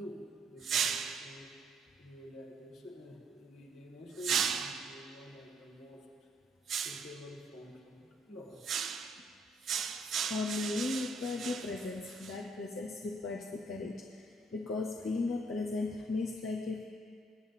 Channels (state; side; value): normal; both; correlation 0.68